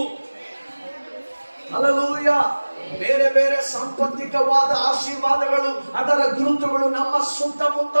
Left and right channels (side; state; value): both; inverted; correlation -1.00